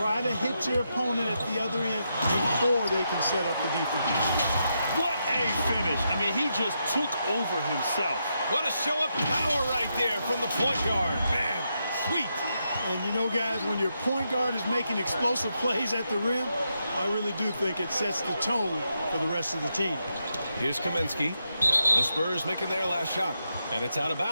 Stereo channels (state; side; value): inverted; both; correlation -0.83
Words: to hit your opponent at the other end before they can set up the defense. What a finish. I mean, he just took over himself. What a show of power right there from the point guard. Man, sweet. And you know, guys, when your point guard is making explosive plays at the rim, I really do think it sets the tone for the rest of the team. Here's Kaminsky. The Spurs making their last shot. And it's out of